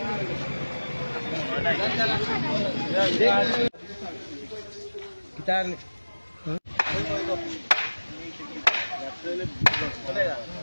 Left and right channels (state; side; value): inverted; both; correlation -1.00